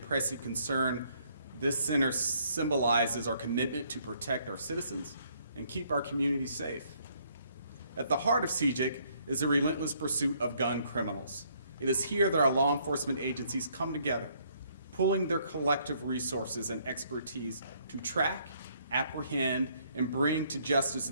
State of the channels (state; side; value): inverted; both; correlation -0.67